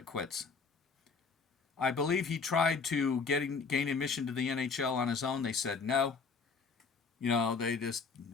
quits. I believe he tried to gain admission to the NHL on his own. They said no. They just,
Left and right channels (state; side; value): quieter; right; 4.9 dB